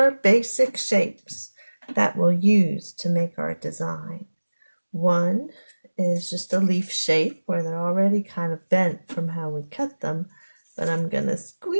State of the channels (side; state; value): both; inverted; correlation -1.00